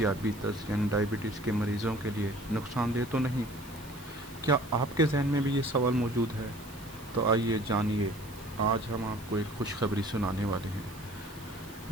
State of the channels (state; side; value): noise; right; hiss, 20 dB below the sound